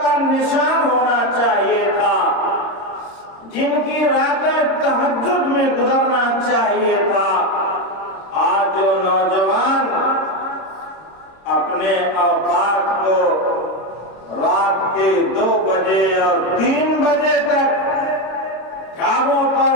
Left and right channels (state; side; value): late; right; 26 ms